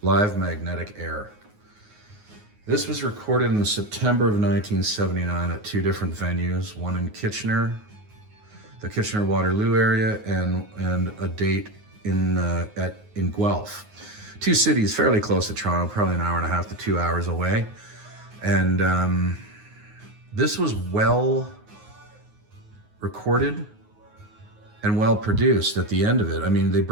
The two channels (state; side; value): late; left; 9.5 ms